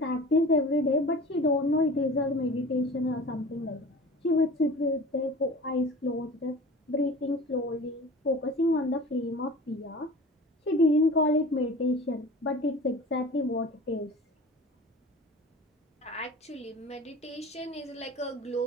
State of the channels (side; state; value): both; normal; correlation 0.39